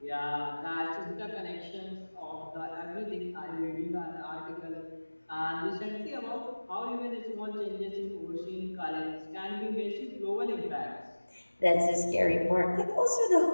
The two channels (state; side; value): inverted; both; correlation -1.00